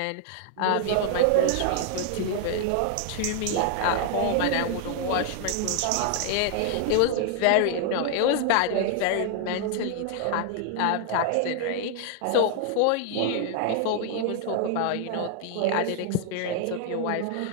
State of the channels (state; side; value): different; both; correlation 0.00